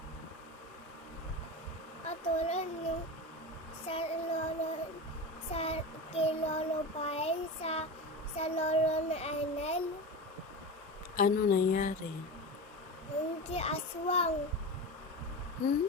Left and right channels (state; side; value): normal; both; correlation 0.25